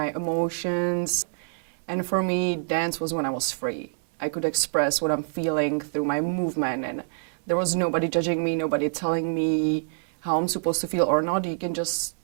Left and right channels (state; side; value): silent; left; 61 dB below the other